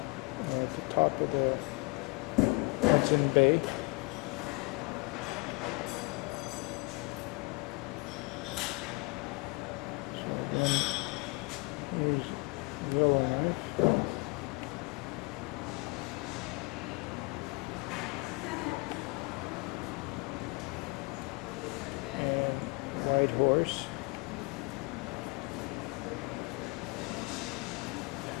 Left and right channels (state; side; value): quieter; right; 28.7 dB